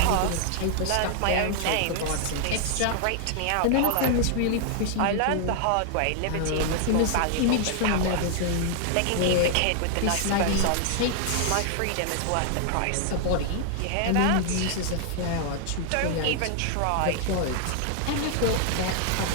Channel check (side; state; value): both; different; correlation 0.00